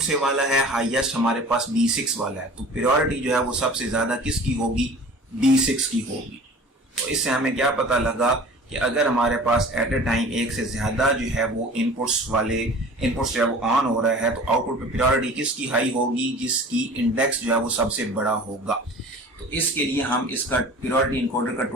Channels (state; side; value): normal; both; correlation 0.42